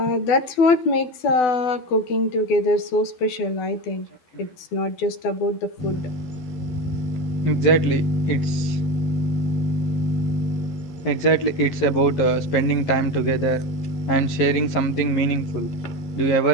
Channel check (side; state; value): right; late; 11 ms